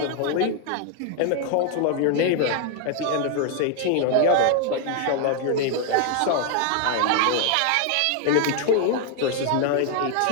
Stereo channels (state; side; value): different; both; correlation 0.00